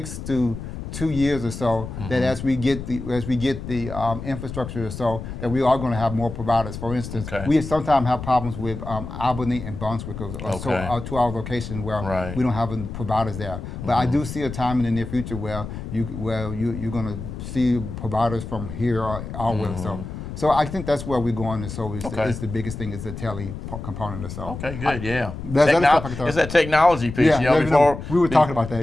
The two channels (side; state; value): left; noise; rumble, 9 dB below the sound